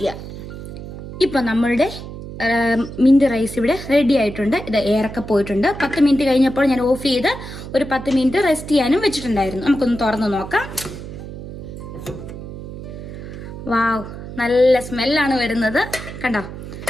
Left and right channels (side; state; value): right; noise; hum, 11 dB below the sound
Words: ഇപ്പം നമ്മളുടെ മിന്റ് റൈസ് ഇവിടെ റെഡി ആയിട്ടുണ്ട്. ഇത് എയറൊക്കെ പോയിട്ടുണ്ട്. 10 മിനിറ്റ് കഴിഞ്ഞപ്പോൾ ഞാൻ ഓഫ് ചെയ്ത് ഒരു 10 മിനിറ്റ് റെസ്റ്റ് ചെയ്യാനും വെച്ചിട്ടുണ്ടായിരുന്നു. നമുക്കൊന്ന് തുറന്ന് നോക്കാം. വാവ്, നല്ല സ്മെല്ലാണ് വരുന്നത്. കണ്ടോ,